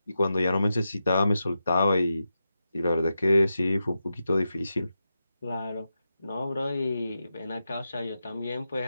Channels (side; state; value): both; inverted; correlation -0.89